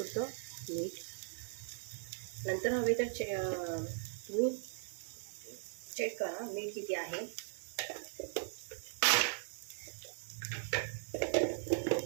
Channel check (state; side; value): silent; left; 52 dB below the other